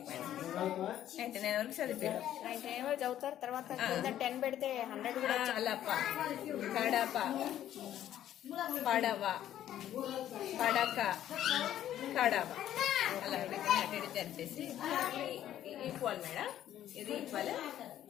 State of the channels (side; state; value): right; quieter; 11.7 dB